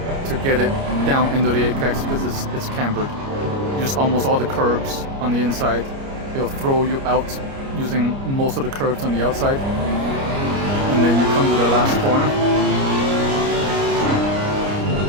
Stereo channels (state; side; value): late; left; 29 ms